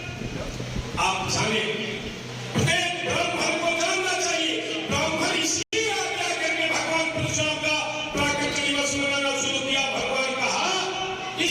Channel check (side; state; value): both; identical; correlation 1.00